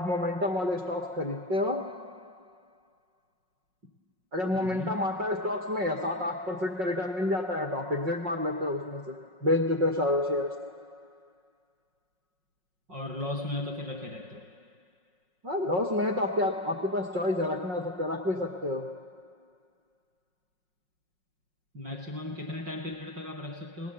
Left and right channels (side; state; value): left; late; 5.5 ms